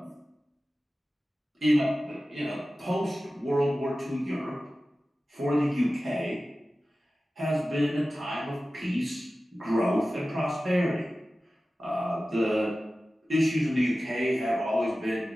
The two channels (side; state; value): both; normal; correlation 0.95